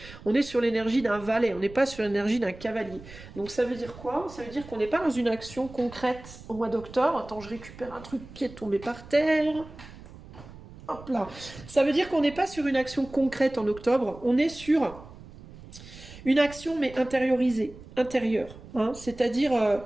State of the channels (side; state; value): right; noise; rumble, 17 dB below the sound